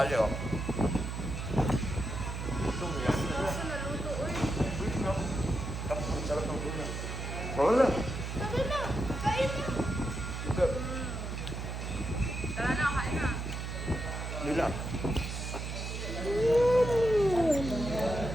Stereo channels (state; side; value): noise; right; hum, 5 dB below the sound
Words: oh. Sarap ng tuna. Wala.